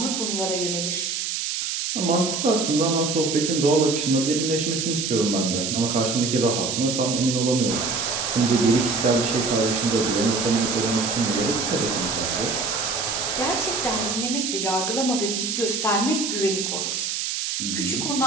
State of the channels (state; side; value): noise; right; hiss, 2 dB below the sound